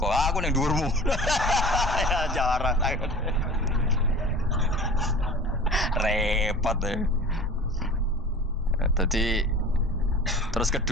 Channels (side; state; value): both; normal; correlation 0.40